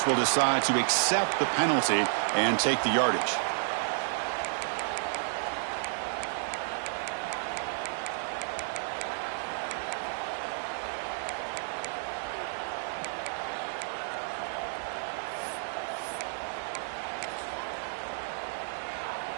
will decide to accept the penalty and take the yardage.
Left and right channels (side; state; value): left; silent; digital silence